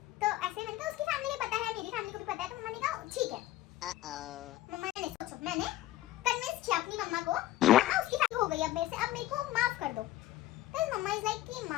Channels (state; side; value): quieter; right; 14.9 dB